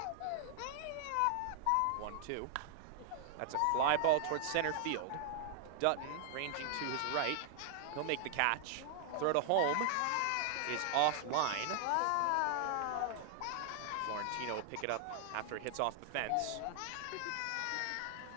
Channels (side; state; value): both; different; correlation 0.00